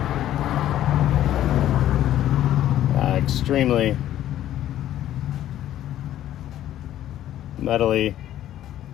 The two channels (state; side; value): quieter; right; 12.4 dB